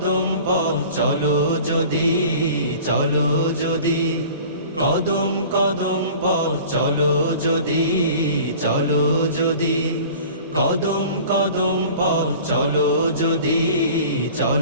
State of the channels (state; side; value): inverted; both; correlation -0.43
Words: পথ চলো যদি, চলো যদি। কদম কদম পথ চলো যদি, চলো যদি। কদম কদম পথ চলো যদি,